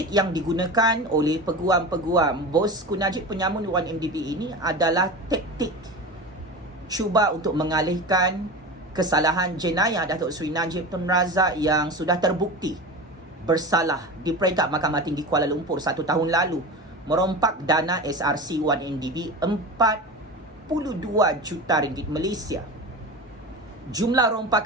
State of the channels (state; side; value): normal; both; correlation 0.28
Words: yang digunakan oleh peguam-peguam bosku Najib penyamun 1MDB ini adalah taktik cuba untuk mengalihkan kesalahan jenayah Datuk Seri Najib Tun Razak yang sudah terbukti bersalah di peringkat Mahkamah Tinggi Kuala Lumpur 1 tahun lalu merompak dana SRC1MDB 42 juta ringgit Malaysia. Jumlah